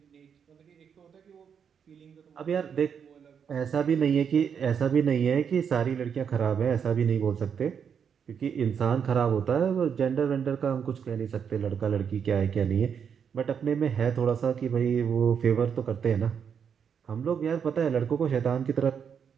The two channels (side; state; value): left; quieter; 7.3 dB